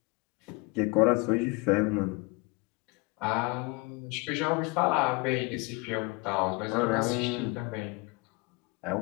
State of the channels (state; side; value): quieter; right; 26.7 dB